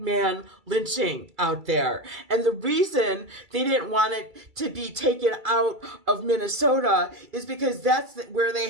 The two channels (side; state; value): left; late; 2.3 ms